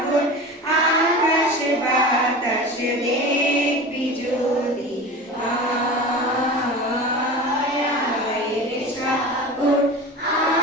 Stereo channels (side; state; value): both; normal; correlation 0.33